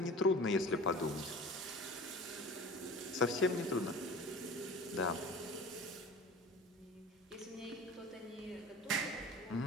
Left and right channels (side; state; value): both; normal; correlation 0.39